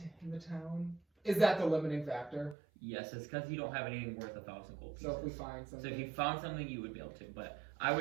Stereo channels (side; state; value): left; drops out; at 2.6 s